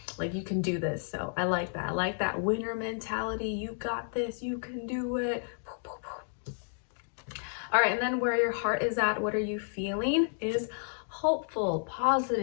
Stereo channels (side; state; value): right; silent; digital silence